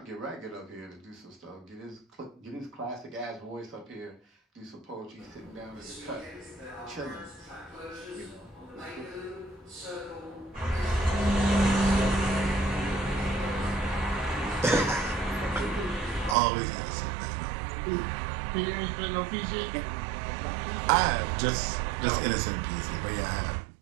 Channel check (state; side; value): drops out; left; at 16.4 s